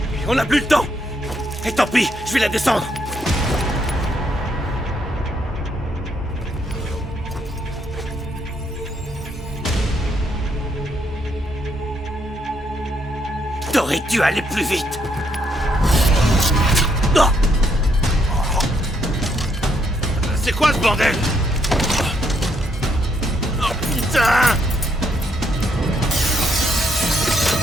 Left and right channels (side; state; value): both; normal; correlation 0.74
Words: On n'a plus le temps. Et tant pis, je vais la descendre. T'aurais dû aller plus vite. Non. C'est quoi ce bordel? Oh putain!